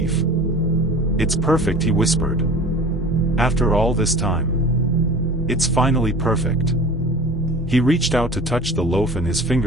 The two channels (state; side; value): normal; both; correlation 0.40